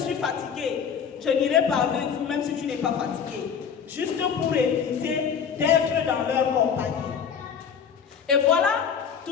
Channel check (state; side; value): quieter; right; 7.2 dB